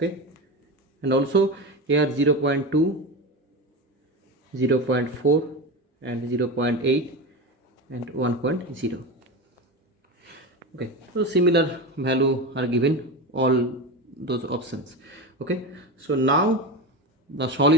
and also here 0.2, 0.4 and 0.8 and 1.0. Okay, so similar value are given all those options. Okay, so now the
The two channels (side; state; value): both; normal; correlation 0.22